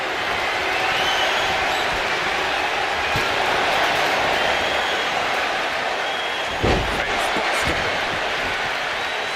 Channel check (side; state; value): both; identical; correlation 1.00